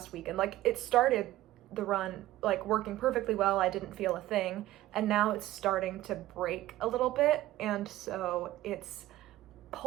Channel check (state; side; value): quieter; left; 15.5 dB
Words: week, and like it started the run like working perfectly well, I didn't feel a thing, and now it's starting to break a little bit, and so it's